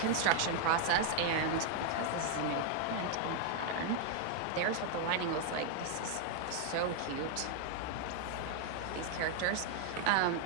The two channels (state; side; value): different; both; correlation 0.00